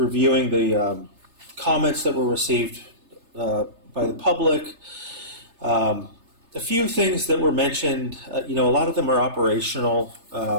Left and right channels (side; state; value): left; late; 3.3 ms